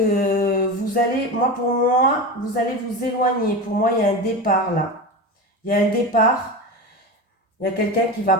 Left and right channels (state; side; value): normal; both; correlation 0.24